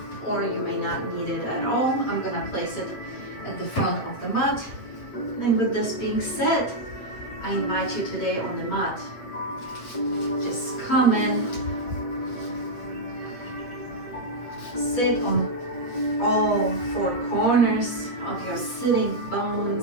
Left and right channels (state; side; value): late; right; 8.2 ms